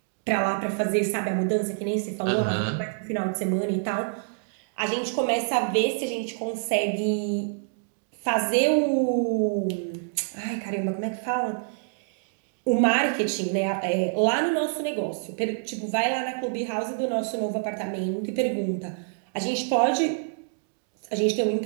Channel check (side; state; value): left; silent; digital silence